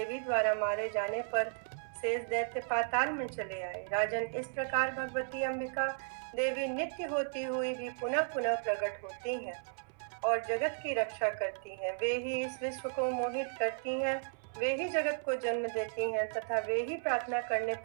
द्वारा मारे जाने पर शेष दैत्य पाताल में चले आए। राजन, इस प्रकार भगवती अंबिका देवी नित्य होती हुई भी पुनः पुनः प्रकट होती हैं और जगत की रक्षा करती हैं। वे ही इस विश्व को मोहित करती हैं, वे ही जगत को जन्म देती हैं तथा वे ही प्रार्थना करने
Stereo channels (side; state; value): left; silent; 55 dB below the other